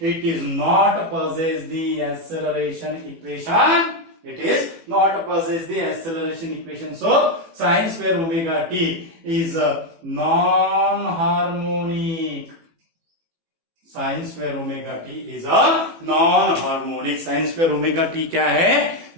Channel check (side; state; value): left; late; 18 ms